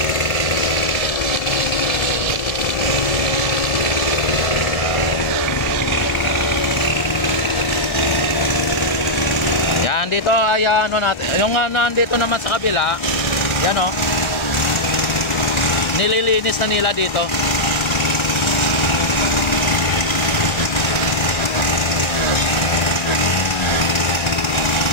Dito ay natin, yung nandito naman sa kabila, yan nililinis na nila dito.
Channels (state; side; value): late; right; 1.3 ms